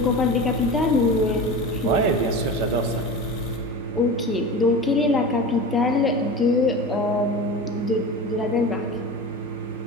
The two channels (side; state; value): both; normal; correlation 0.31